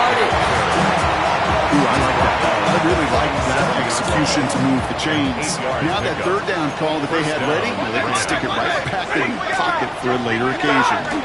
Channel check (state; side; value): identical; both; correlation 1.00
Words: Ooh, I like that. I really like that execution to move the chains. Now that 3rd down call that they had ready, they can stick it right back in the pocket for a later occasion.